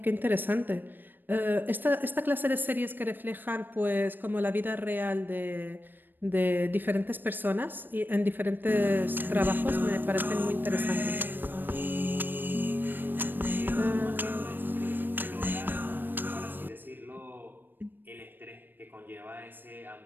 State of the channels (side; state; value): left; late; 0.093 ms